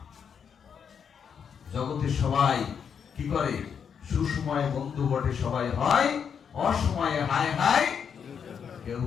জগতের সবাই কি করে? সুসময়ে বন্ধু বটে সবাই হয়, অসময়ে হায় হায় কেউ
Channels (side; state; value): right; quieter; 7.2 dB